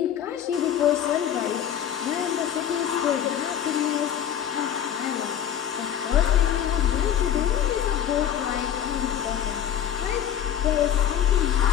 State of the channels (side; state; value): right; quieter; 9.7 dB